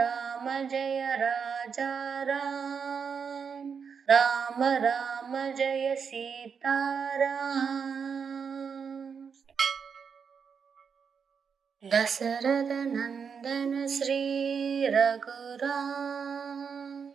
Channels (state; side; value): quieter; left; 6.4 dB